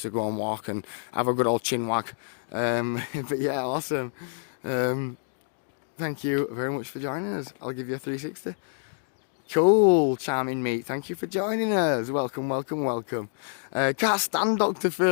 to go and walk and have a good old chin wag. But yeah, awesome. Thank you very much for joining us. I'll give you a 360. Cool, charming mate, thank you for joining us. Welcome. Can't stand Dr.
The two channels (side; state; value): right; silent; digital silence